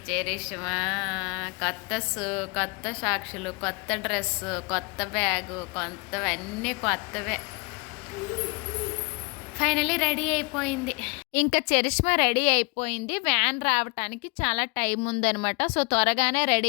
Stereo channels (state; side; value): quieter; right; 30.5 dB